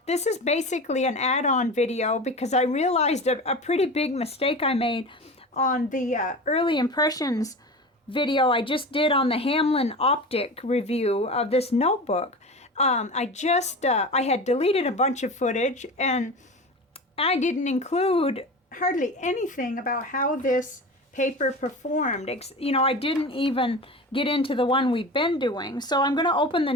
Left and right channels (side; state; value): both; normal; correlation 0.31